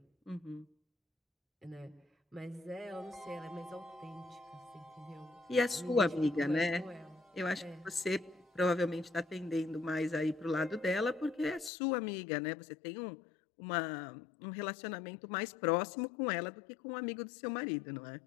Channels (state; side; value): drops out; right; at 11.7 s